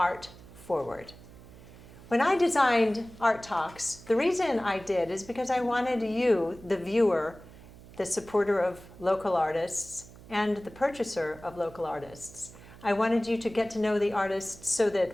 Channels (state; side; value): noise; right; hum, 19 dB below the sound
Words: forward. When I designed Art Talks, the reason I did is because I wanted you, the viewer, the supporter of local artists, and the purchaser of local artists. I wanted you to get to know the artists so